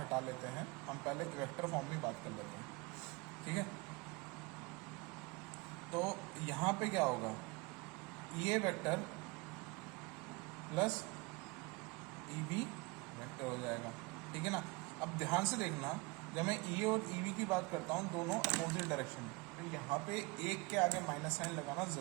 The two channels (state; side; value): quieter; left; 26.1 dB